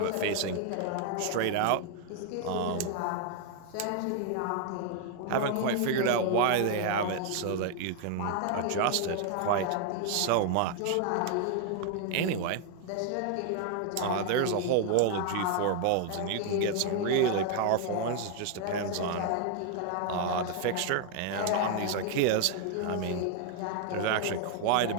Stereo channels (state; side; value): different; both; correlation 0.00